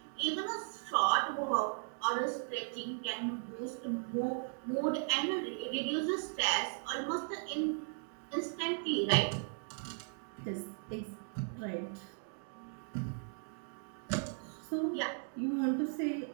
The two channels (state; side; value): silent; left; 53 dB below the other